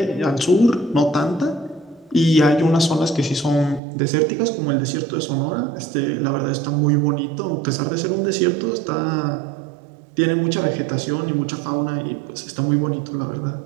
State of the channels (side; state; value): left; drops out; at 3.8 s